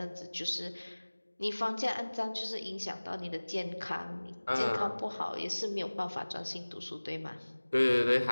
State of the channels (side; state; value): both; inverted; correlation -1.00